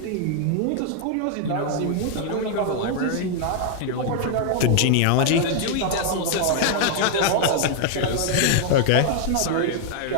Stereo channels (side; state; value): both; different; correlation 0.00